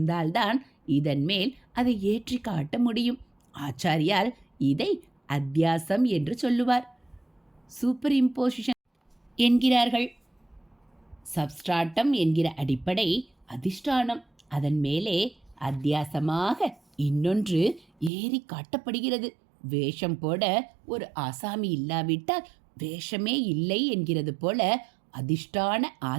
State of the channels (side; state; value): left; drops out; at 18.1 s